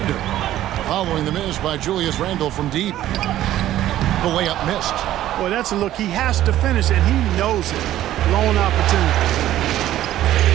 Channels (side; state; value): left; quieter; 13.3 dB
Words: Following the miss by Julius Randle from deep. The layup missed. Boy, that's a look. He has to finish, and he knows it. Lone opportunity.